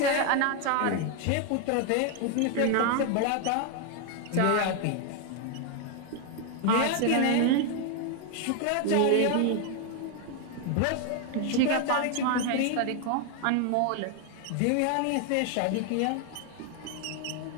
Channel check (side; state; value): both; different; correlation 0.01